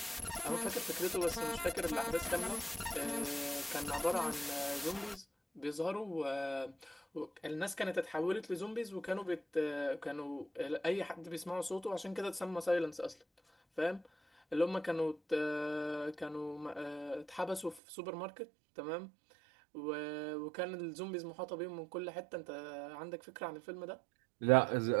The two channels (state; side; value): drops out; left; at 17.8 s